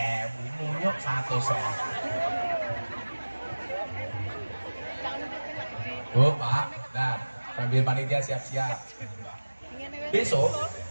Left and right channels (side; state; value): both; inverted; correlation -1.00